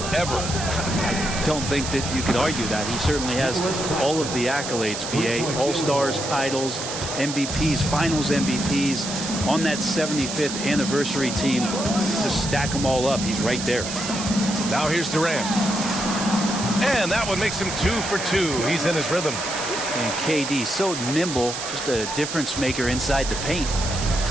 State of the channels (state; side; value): noise; right; hiss, 6 dB below the sound